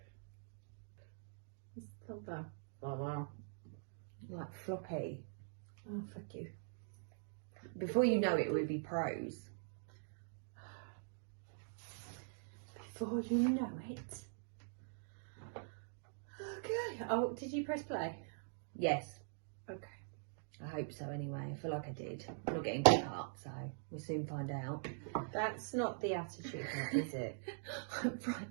Stop that. Wow. Like floppy. Oh, fuck you. Before you know it, we'll be pros. Before you know it. Okay. Oh, did you press play? Yes. Okay. I hope so anyway. I feel like I did. I'm not getting cut up, so we'll soon find out. That's not the attitude, is it? I'm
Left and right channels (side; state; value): left; silent; digital silence